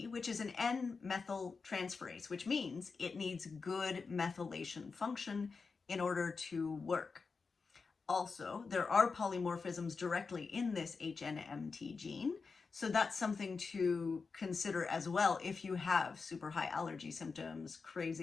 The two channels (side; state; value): right; quieter; 4.7 dB